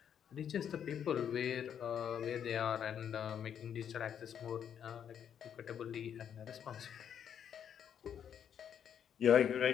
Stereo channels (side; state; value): right; quieter; 8.7 dB